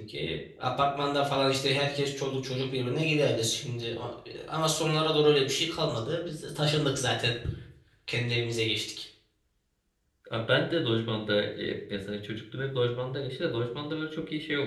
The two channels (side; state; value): both; identical; correlation 1.00